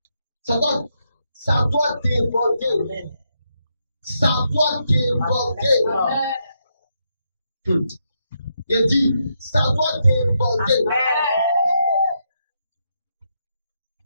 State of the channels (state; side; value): inverted; both; correlation -0.80